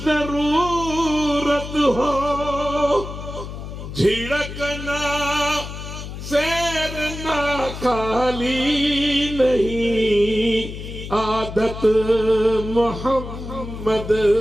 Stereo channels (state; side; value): noise; left; hum, 9 dB below the sound